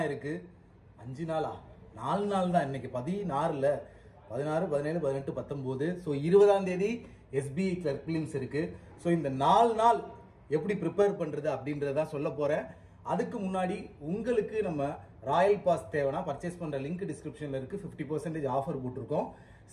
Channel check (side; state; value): both; identical; correlation 1.00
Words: இருக்கு. 5 நாளா? 4 நாள் தான். இன்னைக்கு 16, 17, 18, 19. ஸோ 20ஆம் தேதி SBI கிளர்க் பிலிம்ஸ் இருக்கு. ஸோ இந்த 4 நாள் எப்படி ப்ரிப்பேர் பண்றது அப்படின்றத சொல்ல போறேன். அதுக்கு முன்னாடி உங்களுக்கு நம்ம ராயல் பாஸ் தேவைன்னா பர்ச்சேஸ் பண்ற லிங்க் டிஸ்கிரிப்ஷன்ல இருக்கு. 50% ஆஃபர் போட்டிருக்கோம்.